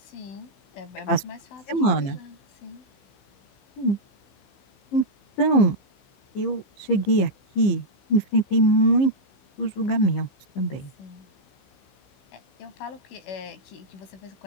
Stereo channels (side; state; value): right; late; 15 ms